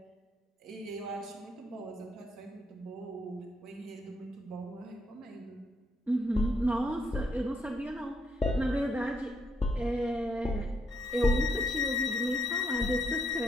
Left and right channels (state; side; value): normal; both; correlation 0.74